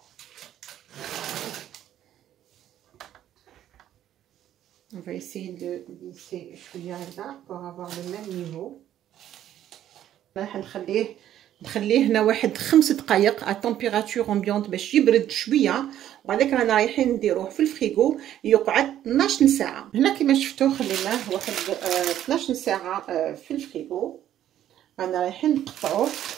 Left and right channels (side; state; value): left; quieter; 11.6 dB